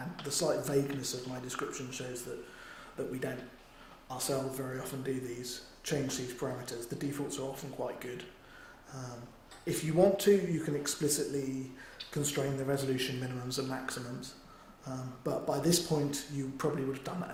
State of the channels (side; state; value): both; identical; correlation 1.00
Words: the slight vagueness of my description shows that we don't ourselves very often do change these parameters. The defaults are often quite good. If you want to, you can explicitly constrain the resolution minimums and maximums, but by this point you probably would have done that